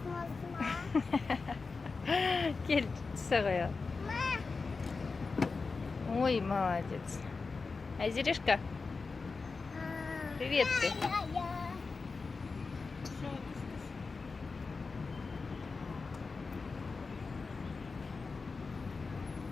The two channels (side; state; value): right; quieter; 4.3 dB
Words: ма? Кел, түсе қояйық. Ой, молодец. Айзерешка, привет ты.